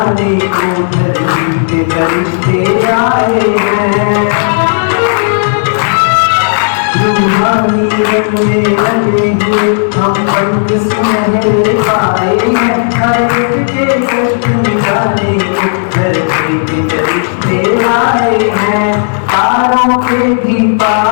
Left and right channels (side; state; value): right; silent; digital silence